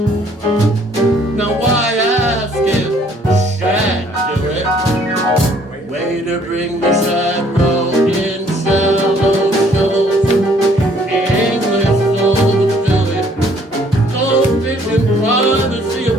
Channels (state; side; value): normal; both; correlation 0.61